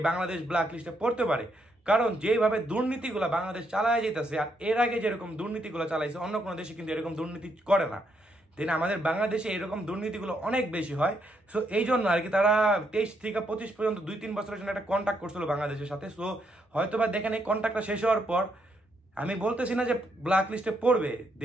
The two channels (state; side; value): normal; both; correlation 0.76